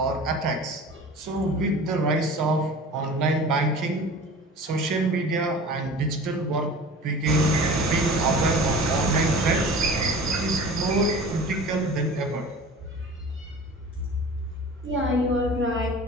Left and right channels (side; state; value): both; normal; correlation 0.39